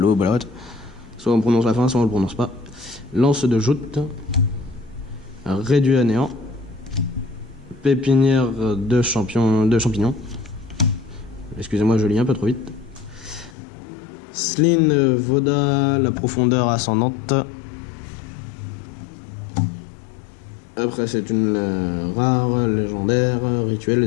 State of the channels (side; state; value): right; drops out; at 13.6 s